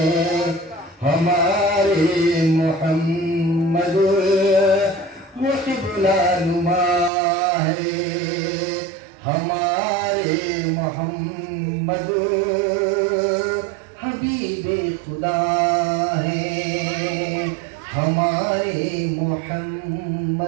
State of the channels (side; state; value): left; drops out; at 7.1 s